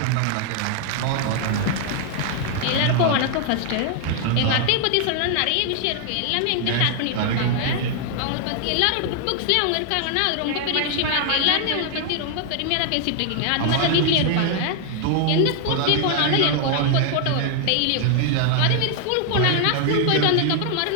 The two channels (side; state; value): both; different; correlation 0.00